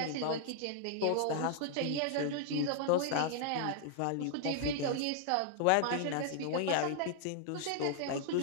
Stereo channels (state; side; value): different; both; correlation -0.01